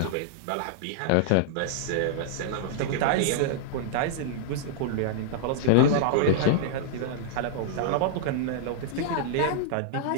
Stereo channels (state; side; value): different; both; correlation -0.02